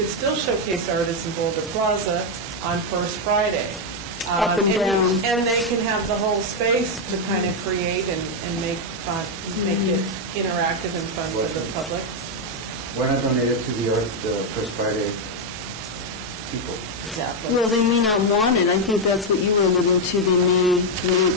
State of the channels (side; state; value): both; normal; correlation 0.02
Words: still showcase artists in Boulder Plaza on First Friday. Up and down. And they can have the whole space to kind of create and make fun, make it interactive and fun for the public. Why not donate it to the First Friday people? Exactly. Well, they may not want it. I think that's what you were alluding to. They may